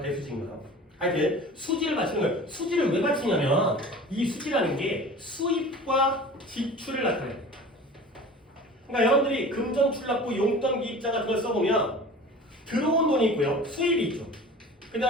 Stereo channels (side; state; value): both; normal; correlation 0.40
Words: 하여튼 수지를 맞추는 거예요. 수지를 왜 맞추냐면 이 수지라는 게 수입과 지출을 나타내요. 그러니까 여러분들이 금전출납부 용돈 기입자 같은 걸 써보면 들어온 돈이 있고요. 수입이 있죠. 그